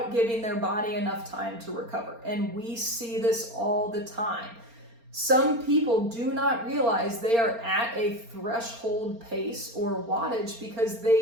giving their body enough time to recover. And we see this all the time. Some people do not realize they are at a threshold pace or wattage because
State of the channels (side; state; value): left; late; 4.3 ms